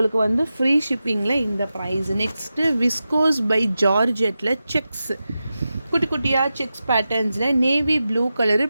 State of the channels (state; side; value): inverted; both; correlation -0.92